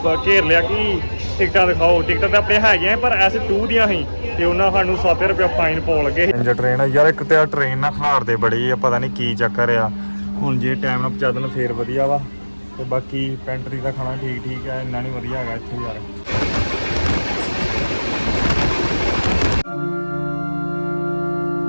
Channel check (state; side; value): inverted; both; correlation -1.00